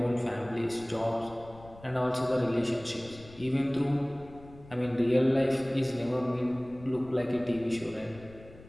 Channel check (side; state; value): left; noise; rumble, 20 dB below the sound